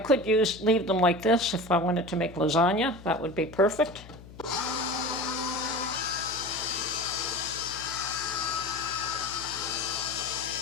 leave them like this if I wanted to make lasagna. That would be perfect.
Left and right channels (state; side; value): noise; left; hum, 18 dB below the sound